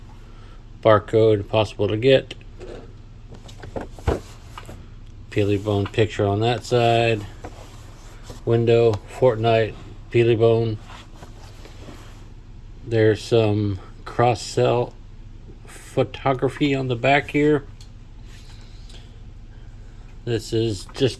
Barcode possible to get. Peely bone picture on that side. Window, Fortnite, peely bone. There's some cross-sell photography on the back here. This is just,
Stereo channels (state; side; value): identical; both; correlation 1.00